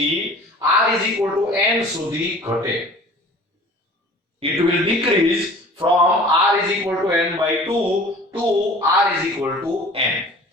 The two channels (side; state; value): both; normal; correlation 0.45